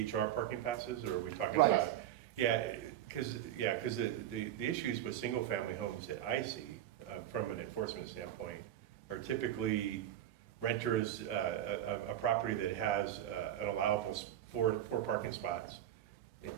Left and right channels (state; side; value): quieter; left; 11.8 dB